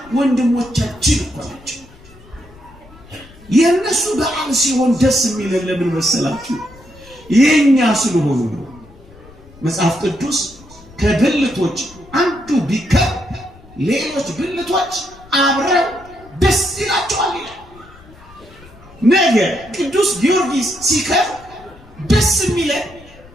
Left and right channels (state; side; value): noise; left; rumble, 23 dB below the sound